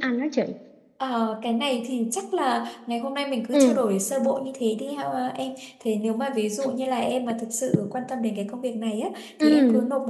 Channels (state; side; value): identical; both; correlation 1.00